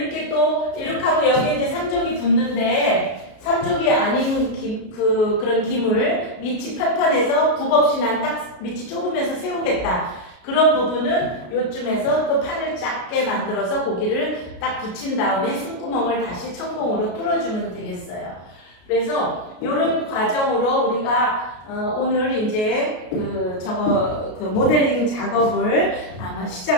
또 이렇게 하고 여기에 이제 3족이 붙는데 삼족이 아닌 그런 김을 밑이 편편해서 굽 없이 난 딱 밑이 좁으면서 세우겠다. 그런 부분은 요쯤에서 또 판을 작게 만들어서 고기를 딱 붙인 다음에 숨구멍을 다시 천공으로 뚫어주면 되겠어요. 그래서 이런 과정으로 우리가 오늘 이제 그 모델링 작업을 아마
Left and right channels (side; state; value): right; late; 33 ms